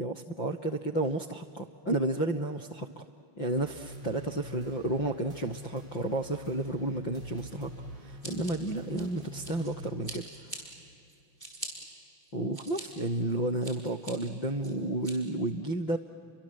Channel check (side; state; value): right; late; 5.9 ms